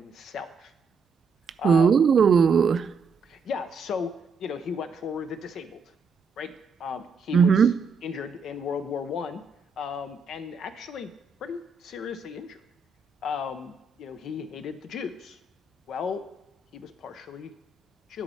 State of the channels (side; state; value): left; quieter; 4.5 dB